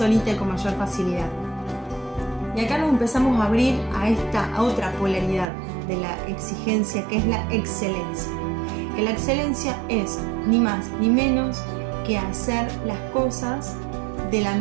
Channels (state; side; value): drops out; left; at 5.5 s